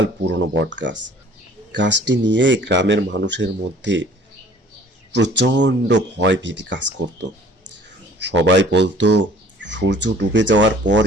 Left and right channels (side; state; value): both; normal; correlation 0.52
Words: পুরনো বটগাছ। গাছটি নিয়ে গ্রামের মানুষের মধ্যে প্রচণ্ড ভয় ভীতি কাজ করত। সবাই বলতো, সূর্য ডুবে যাওয়ার পর